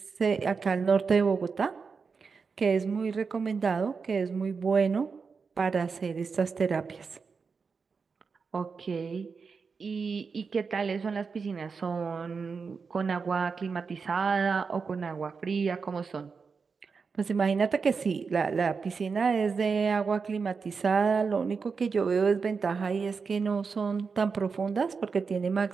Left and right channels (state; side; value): quieter; left; 5.2 dB